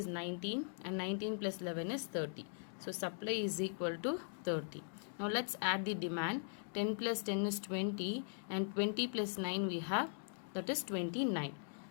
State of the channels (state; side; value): silent; right; digital silence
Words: 19, and 19 plus 11 is 30. So supply is equal to 30. Now let's add the demand. 10 plus 10 is 20, and 20 plus 9 we have, that is 29.